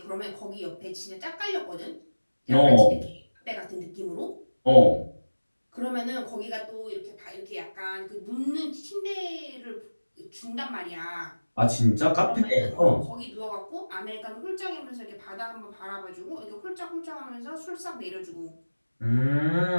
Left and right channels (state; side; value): inverted; both; correlation -1.00